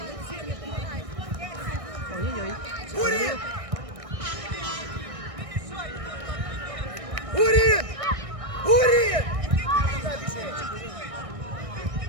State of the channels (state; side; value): late; left; 1.6 ms